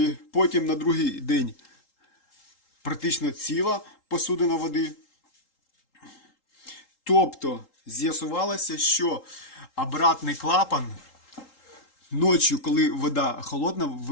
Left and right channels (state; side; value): late; right; 3.8 ms